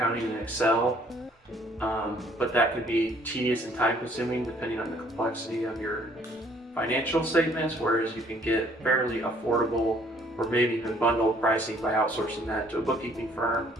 in Excel. But that could be tedious and time consuming depending on the complexity of your financial statements, whereas you can get fairly affordable or maybe even bundled pricing by outsourcing that to a bookkeeping firm.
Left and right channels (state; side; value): normal; both; correlation 0.61